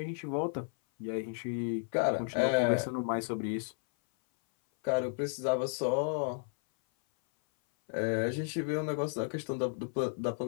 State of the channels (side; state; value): right; silent; 56 dB below the other